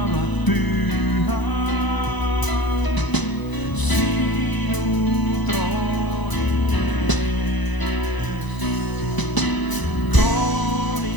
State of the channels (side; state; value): right; late; 1.0 ms